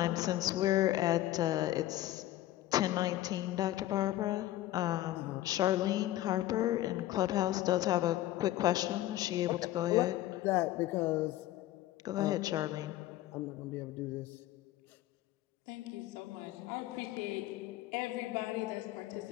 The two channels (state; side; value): quieter; right; 14.9 dB